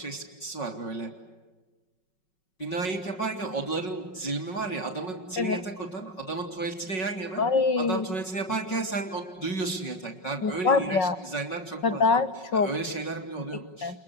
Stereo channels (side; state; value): right; late; 5.4 ms